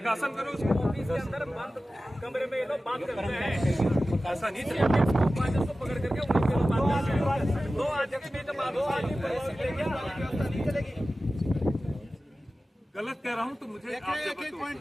करो उसको। ऑफिस के अंदर बंद कमरे में ये लोग बात करते हैं, ऐसा नहीं चलेगा। को पकड़ करके उन्हीं के लोग बात करते हैं। 2 अध्यक्ष में तो बात नहीं चलेगी। गलत कह रहा हूँ तो मुझे आप एक पॉइंट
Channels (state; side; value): normal; both; correlation 0.95